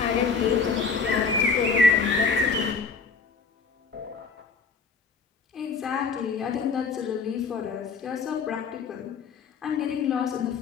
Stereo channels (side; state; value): right; quieter; 4.9 dB